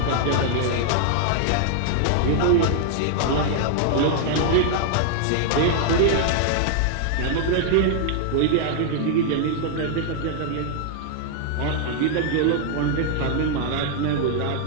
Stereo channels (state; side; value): different; both; correlation -0.01